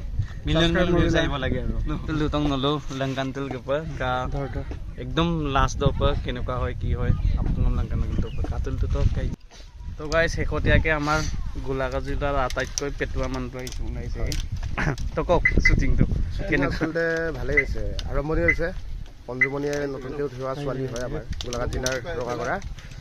million views ayibo lage aro lutong nolo langkan tul ke pa ka ekdom last do pa kenuka hoy ki hoy apun langkan to pa katul to kai তো guys হেকটিয়াকে আমাৰ গোলাগাজিলাৰ আটাইতকৈ পেটুৱা মানুহটো আহিছে ওলাইছে তো কক শুটিংটো কেনেকৈ আচলতে ভালেই হৈছে আৰম্ভণি হৈছে পঞ্জুমণিয়ে নতুনকৈ উঠোৱা ছোৱালী হয় আমাৰ গোলাঘাট জিলাৰ ৰঙাগড়া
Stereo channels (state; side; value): identical; both; correlation 1.00